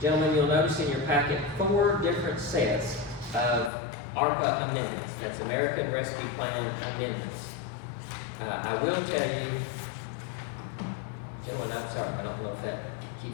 Gentlemen, you'll notice in your packet 4 different sets of ARPA amendments. That's American Rescue Plan amendments. I will tell you, gentlemen, I'm sorry, I don't know if that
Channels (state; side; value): drops out; right; at 3.7 s